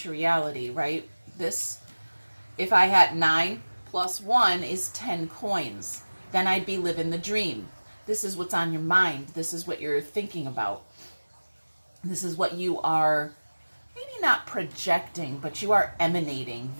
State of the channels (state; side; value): inverted; both; correlation -1.00